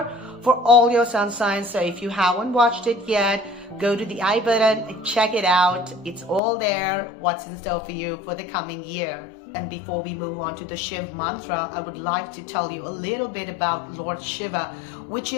for all your sun signs. So if you haven't watched it yet, go to the I button and check it out. It's all there, what's in store for you for the coming year. And before we move on to the Shiv Mantra, I would like to tell you a little bit about Lord Shiva, which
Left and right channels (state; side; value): drops out; right; at 6.4 s